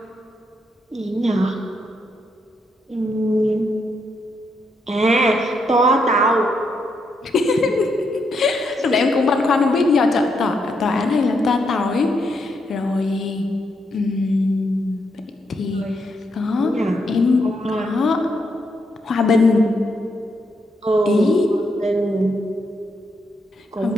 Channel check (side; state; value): both; normal; correlation 0.79